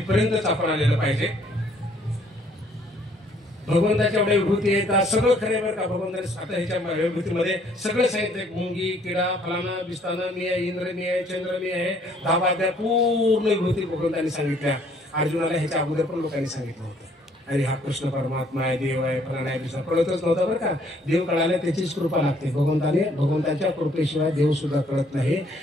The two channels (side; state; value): both; normal; correlation 0.63